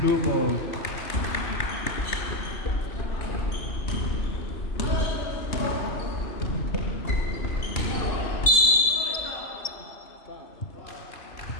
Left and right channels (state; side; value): late; right; 2.7 ms